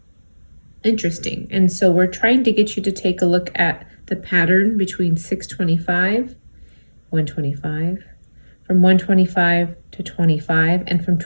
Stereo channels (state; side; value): inverted; both; correlation -1.00